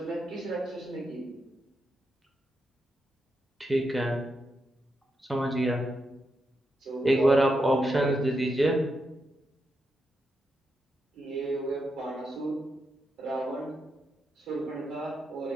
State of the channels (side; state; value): both; normal; correlation 0.84